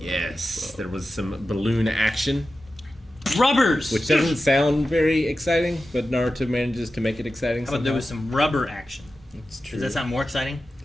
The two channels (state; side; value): normal; both; correlation 0.93